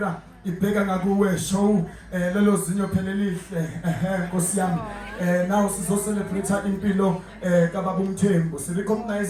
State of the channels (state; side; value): identical; both; correlation 1.00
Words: ibheka ngakuwe show lelo zinyo phelelihle Nkosi yami now sizo celebrate impilo kaBaba uMthembu